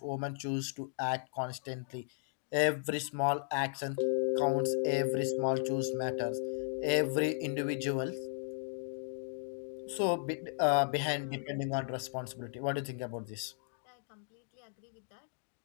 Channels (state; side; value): silent; right; digital silence